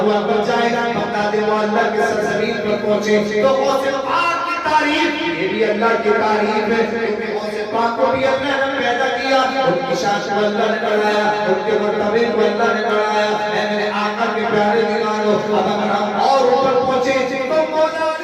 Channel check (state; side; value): identical; both; correlation 1.00